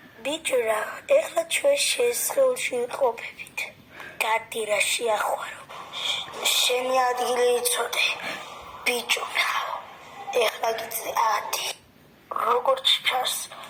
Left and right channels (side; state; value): both; identical; correlation 1.00